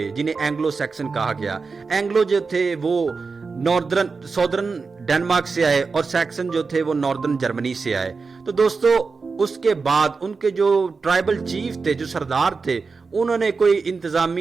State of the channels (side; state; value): left; quieter; 4.6 dB